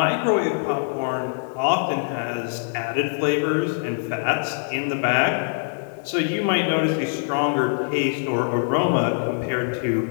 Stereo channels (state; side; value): silent; right; digital silence